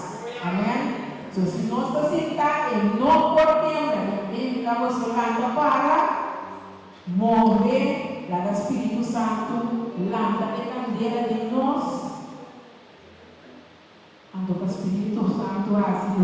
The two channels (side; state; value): both; identical; correlation 1.00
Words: Amém? Então, se nós estamos sentados, não podemos, ele estamos falando para morrer lá do Espírito Santo, lâmpada de candeia de nós. Então, o Espírito Santo assim